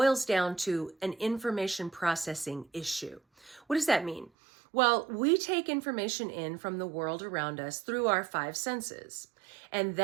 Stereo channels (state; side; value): drops out; left; at 4.3 s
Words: down to an information processing issue. What does that mean? Well, we take information in from the world around us through our five senses. And